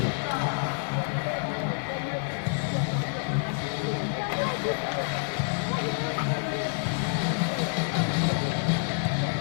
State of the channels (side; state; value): right; quieter; 39.2 dB